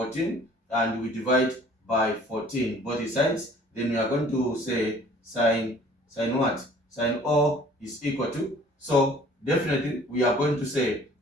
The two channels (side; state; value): both; normal; correlation 0.52